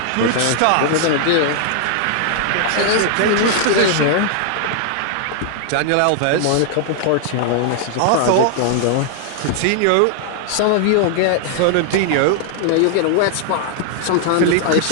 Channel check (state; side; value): different; both; correlation 0.00